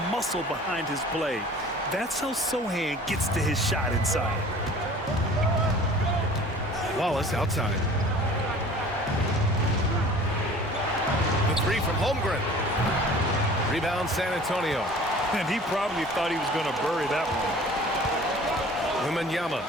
muscle behind his play. That's how Sohan gets to his shot inside. Wallace outside. The 3 from Holmgren. Rebound San Antonio. And he probably thought he was going to bury that one. Wembanyama,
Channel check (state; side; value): normal; both; correlation 0.46